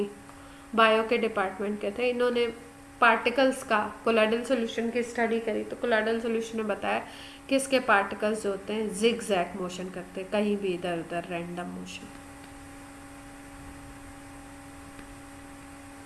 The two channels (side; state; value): both; identical; correlation 1.00